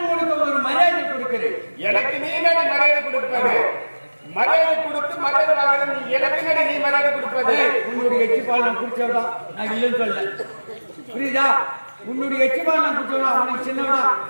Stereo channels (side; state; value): both; inverted; correlation -1.00